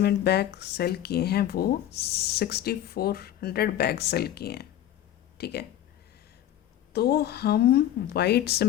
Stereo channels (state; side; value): quieter; right; 11.9 dB